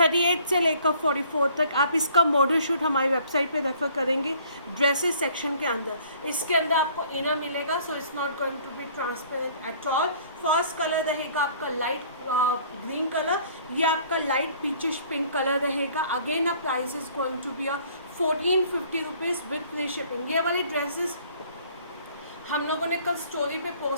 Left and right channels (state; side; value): inverted; both; correlation -0.56